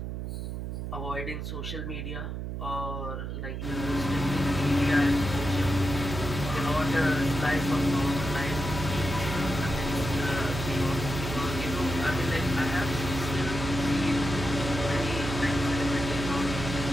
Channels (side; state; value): right; noise; hum, 5 dB below the sound